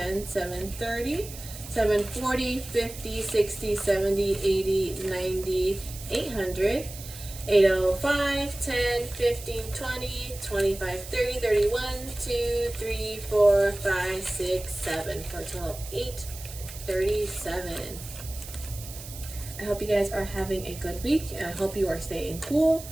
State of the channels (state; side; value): noise; right; hiss, 13 dB below the sound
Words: 730, 740, 50, 60, 70, 80, 90, 800, 805, 10, 15, 20, 25, 30, 31, 2, 3, 4, 5, 6, 7 for a total of 837. I hope you guys are having a good week and I hope you are staying cool